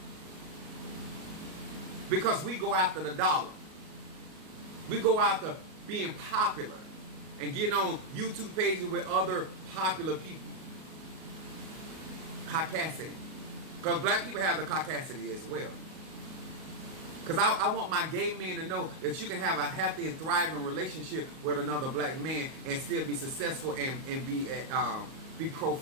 Because we go after the dollar. We go after being popular and getting on YouTube pages with other popular people. Caucasity. Because black people have the caucasity as well. Because I want my gay men to know that you can have a happy and thriving relationship with another black man and still be successful and be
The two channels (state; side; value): late; left; 38 ms